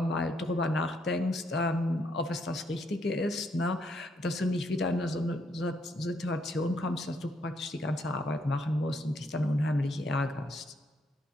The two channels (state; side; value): normal; both; correlation 0.73